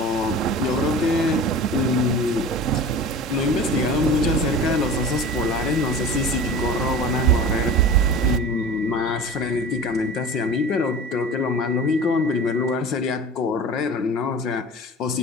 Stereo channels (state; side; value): normal; both; correlation 0.36